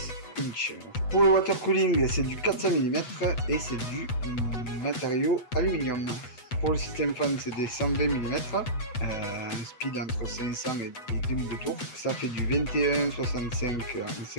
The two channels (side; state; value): right; late; 8.0 ms